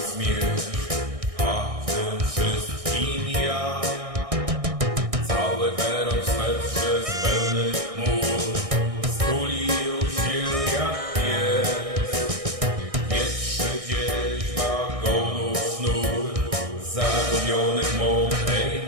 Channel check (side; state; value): left; late; 1.6 ms